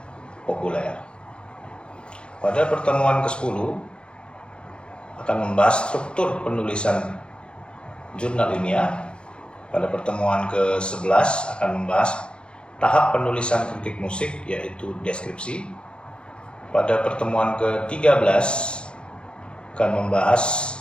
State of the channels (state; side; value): late; right; 0.055 ms